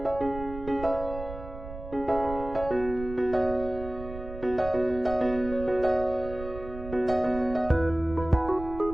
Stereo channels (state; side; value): noise; right; rumble, 12 dB below the sound